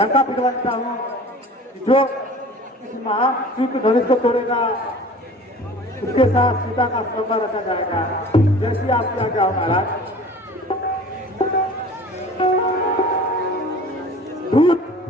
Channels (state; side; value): normal; both; correlation 0.44